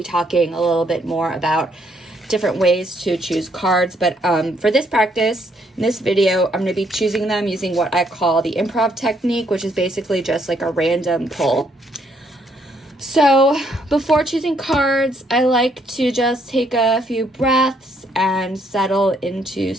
talking a little bit more about different ways to choose cards, but for this practice, in this video, I'm going to be choosing them using what I call the improv technique, which is basically just like a random pull. So before choosing cards, I like to just take a few breaths and settle into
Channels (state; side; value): normal; both; correlation 0.70